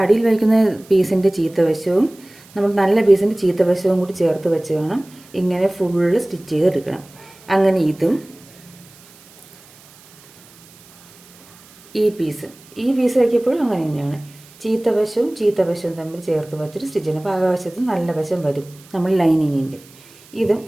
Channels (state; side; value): noise; right; hiss, 25 dB below the sound